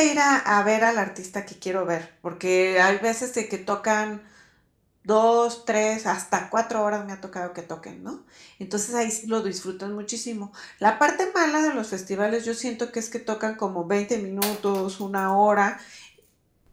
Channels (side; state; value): both; identical; correlation 1.00